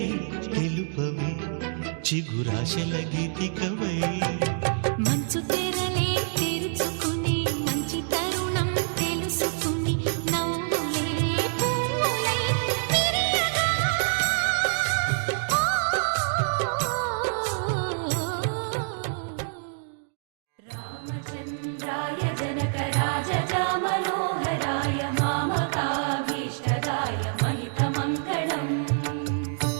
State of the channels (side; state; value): left; silent; digital silence